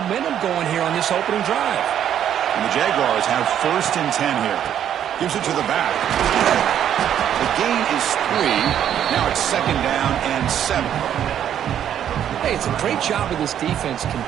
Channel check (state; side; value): quieter; left; 9.9 dB